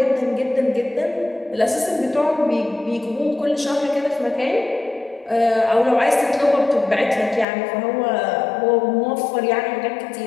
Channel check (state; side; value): drops out; right; at 7.5 s